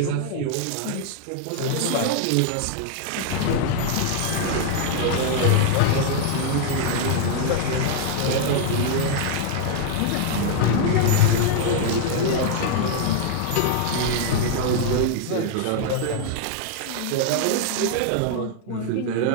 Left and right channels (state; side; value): different; both; correlation 0.00